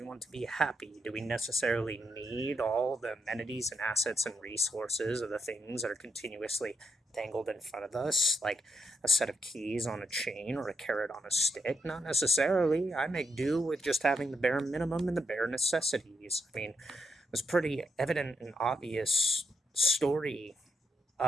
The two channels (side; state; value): both; normal; correlation 0.80